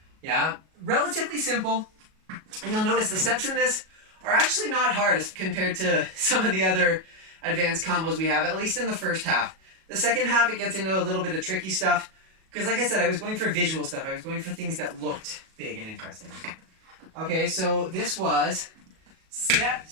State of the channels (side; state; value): left; late; 37 ms